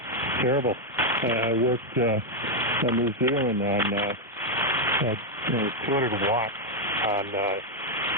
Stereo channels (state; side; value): normal; both; correlation 0.01